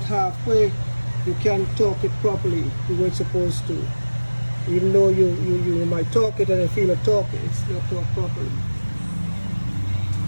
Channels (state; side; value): inverted; both; correlation -1.00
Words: you can't torque it properly the way it's supposed to. Even though you might torque it and you feel a torque, it's not torqued properly.